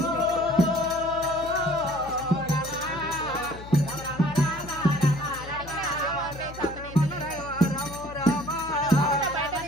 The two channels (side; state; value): left; noise; hum, 14 dB below the sound